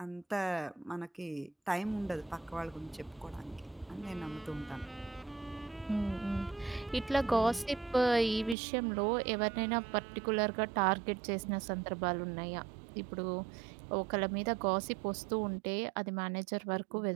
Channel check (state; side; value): drops out; left; at 8.6 s